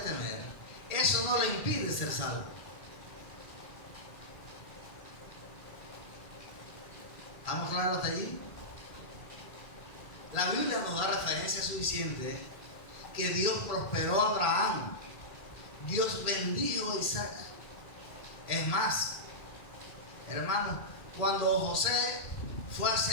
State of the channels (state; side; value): late; right; 1.4 ms